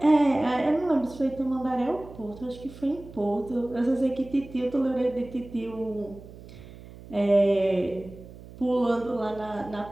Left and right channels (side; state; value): right; noise; hum, 17 dB below the sound